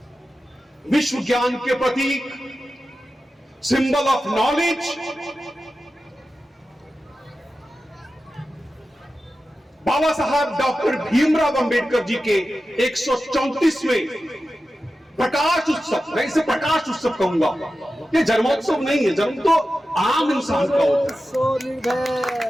विश्व ज्ञान के प्रतीक, सिंबल ऑफ नॉलेज, बाबा साहब डॉक्टर भीमराव अंबेडकर जी के 134वें प्रकाश उत्सव, मैं इसे प्रकाश उत्सव कहूंगा, ये जन्मोत्सव नहीं है। जन्म तो आम इंसान का होता है,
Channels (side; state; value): both; normal; correlation 0.93